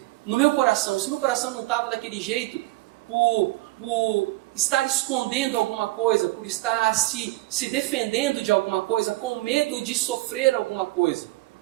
no meu coração. Se meu coração não estava daquele jeito, por estar escondendo alguma coisa, por estar se defendendo de alguma coisa, com medo de sofrer alguma coisa.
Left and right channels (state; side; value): quieter; left; 19.9 dB